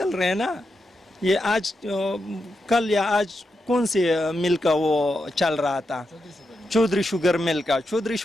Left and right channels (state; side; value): normal; both; correlation 0.86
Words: رہے ہیں نا. یہ آج کل یا آج کون سے مل کا وہ چل رہا تھا؟ چودھری شوگر مل